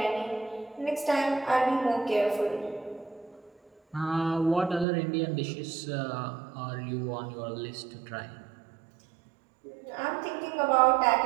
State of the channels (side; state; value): left; drops out; at 4.9 s